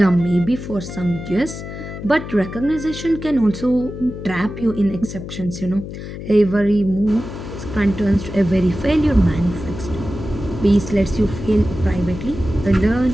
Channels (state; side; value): noise; left; hum, 10 dB below the sound